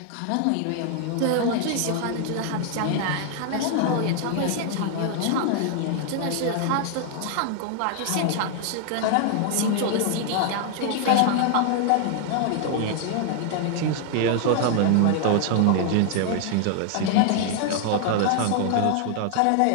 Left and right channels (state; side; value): different; both; correlation 0.00